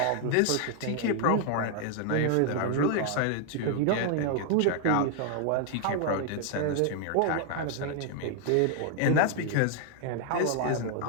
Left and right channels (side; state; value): both; different; correlation 0.00